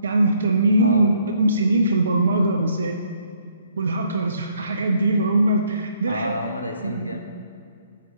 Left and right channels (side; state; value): both; inverted; correlation -0.67